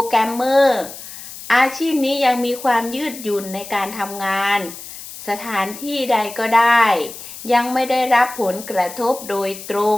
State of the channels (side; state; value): left; noise; hiss, 13 dB below the sound